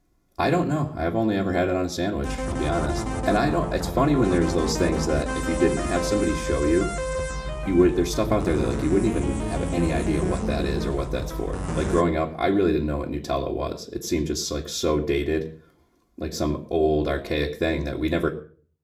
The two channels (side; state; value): both; identical; correlation 1.00